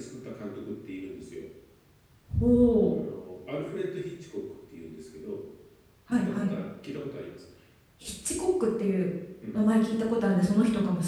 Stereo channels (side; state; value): both; identical; correlation 1.00